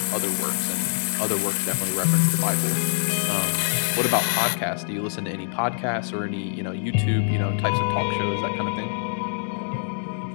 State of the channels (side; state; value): right; silent; 62 dB below the other